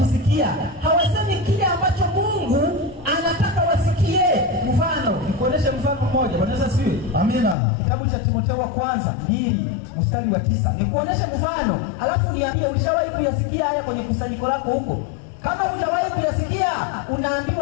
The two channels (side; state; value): right; drops out; at 7.6 s